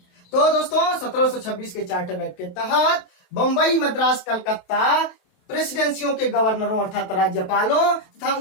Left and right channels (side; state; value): right; late; 27 ms